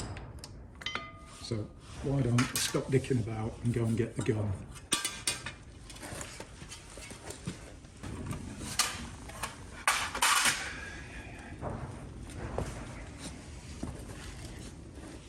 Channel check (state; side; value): identical; both; correlation 1.00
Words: So why don't I stop dicking about and go and get the gun.